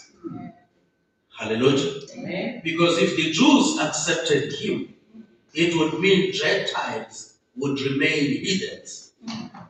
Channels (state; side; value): identical; both; correlation 1.00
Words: Hallelujah. Amen. Because if the Jews accepted him, it would mean Gentiles would remain heathens.